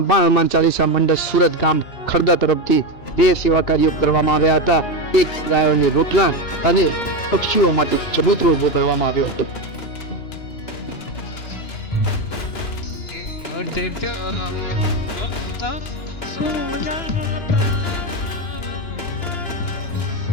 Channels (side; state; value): right; late; 2.9 ms